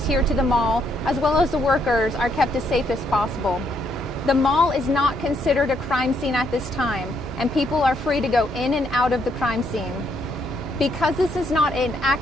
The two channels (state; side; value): normal; both; correlation 0.73